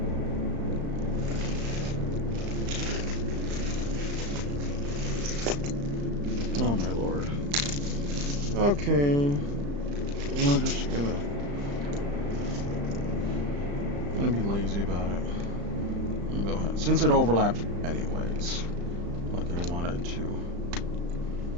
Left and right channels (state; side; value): late; left; 35 ms